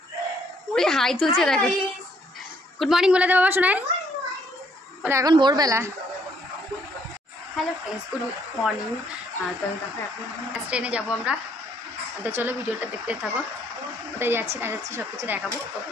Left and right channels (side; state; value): both; normal; correlation 0.67